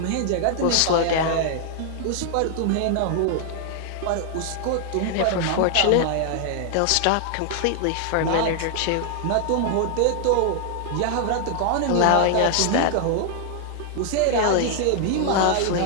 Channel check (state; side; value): different; both; correlation 0.00